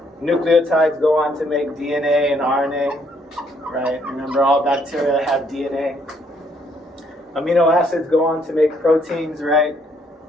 Nucleotides go on to make DNA and RNA, right? Remember, all bacteria have DNA. Amino acids go on to make proteins, right?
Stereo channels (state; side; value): normal; both; correlation 0.69